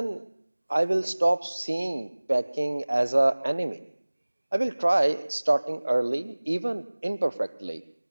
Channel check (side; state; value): both; inverted; correlation -1.00